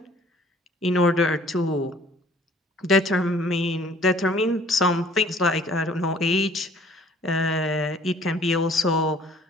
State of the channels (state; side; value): normal; both; correlation 0.55